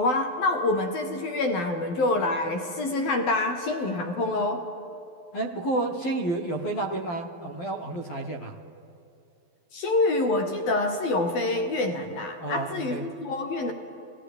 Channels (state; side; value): late; right; 12 ms